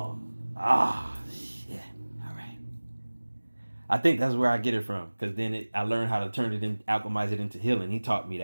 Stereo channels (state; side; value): inverted; both; correlation -1.00